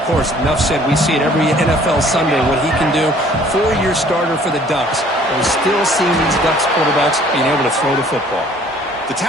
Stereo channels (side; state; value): both; normal; correlation 0.56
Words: Of course, enough said, we see it every NFL Sunday what he can do. 4-year starter for the Ducks. We're still seeing these Ducks quarterbacks being able to throw the football. The